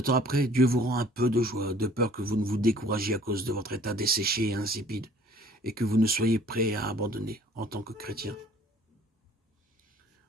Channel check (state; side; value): normal; both; correlation 0.54